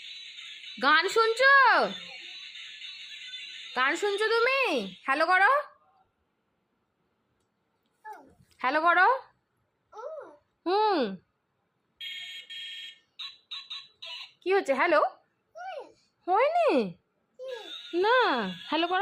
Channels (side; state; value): both; identical; correlation 1.00